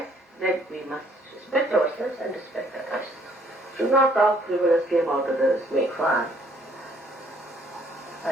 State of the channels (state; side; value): normal; both; correlation 0.63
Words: that we must respect ourselves and respect others. Should not talk frivolously about others, make fun.